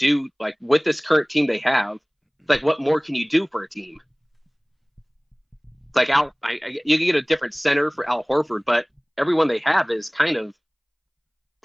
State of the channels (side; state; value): both; identical; correlation 1.00